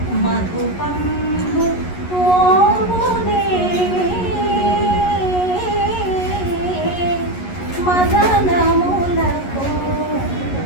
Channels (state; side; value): late; right; 11 ms